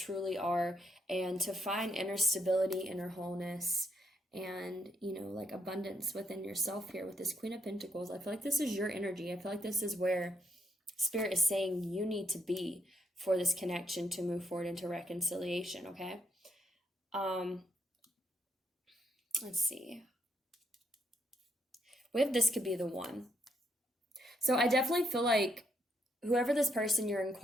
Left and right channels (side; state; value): both; normal; correlation 0.75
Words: are, and to find inner stability, inner wholeness, and like abundance within yourself here with this Queen of Pentacles. I feel like this is your energy. I feel like this is where Spirit is saying you need to be for this connection to move forward into reconciliation, okay? Let's see. We have this could be the one. So I definitely feel like whoever this person you're